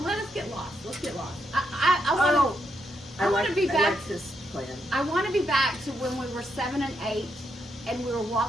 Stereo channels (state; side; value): normal; both; correlation 0.80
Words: let us get lost. Let's get lost. I want to be I back. like this plan. I want to be back to when we were 7 and 8, and we were